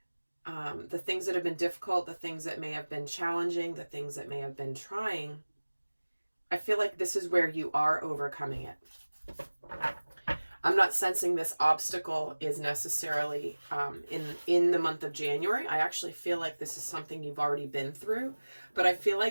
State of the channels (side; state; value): both; inverted; correlation -1.00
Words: the things that have been difficult, the things that may have been challenging, the things that may have been trying, I feel like this is where you are overcoming it. I'm not sensing this obstacle is necessarily in the month of January. I actually feel like this is something you've already been through, but I feel